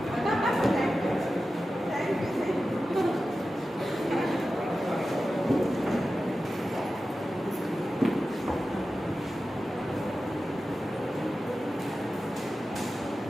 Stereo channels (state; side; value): normal; both; correlation 0.93